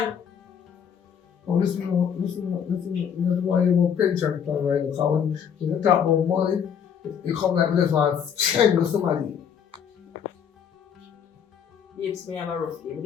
listen. That's why you want pension plan right now. Because when you talk about money, you come like this one, change somebody. Babes, me have a rough game.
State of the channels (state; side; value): quieter; right; 7.9 dB